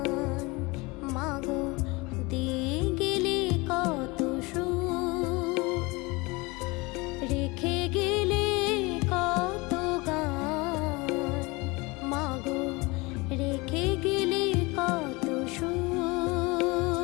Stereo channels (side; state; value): right; quieter; 24.8 dB